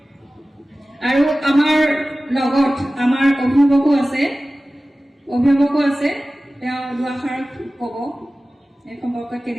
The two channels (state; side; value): normal; both; correlation 0.96